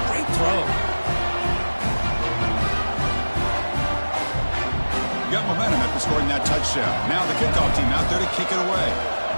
Great throw. Got momentum after scoring that touchdown. Now the kickoff team out there to kick it away.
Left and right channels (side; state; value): both; inverted; correlation -1.00